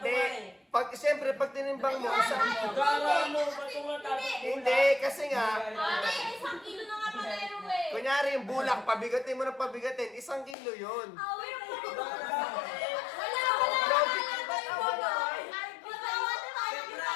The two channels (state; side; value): drops out; right; at 10.6 s